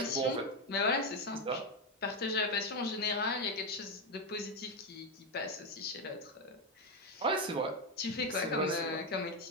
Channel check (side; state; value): both; normal; correlation 0.08